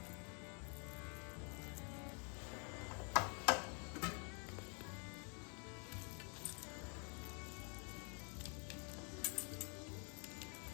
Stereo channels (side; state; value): right; quieter; 38.7 dB